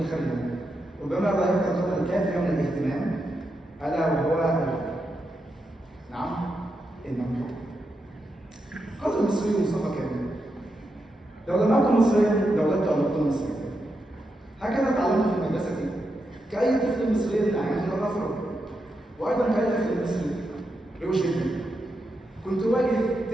ربما لا يمكن القدر الكافي من الاهتمام، ألا وهو نعم إنه قال المصري مصطفى كامل: لو لم أكن مصريا لولدت أن أكون مصريا. هكذا تعلمت في المدرسة كأي طفل مصري ناعم الرفض، وأيضا كأي طفل مصري روش جدا كنت أواجه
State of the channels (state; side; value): normal; both; correlation 0.85